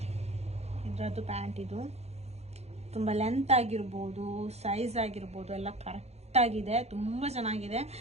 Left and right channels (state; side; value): late; left; 0.31 ms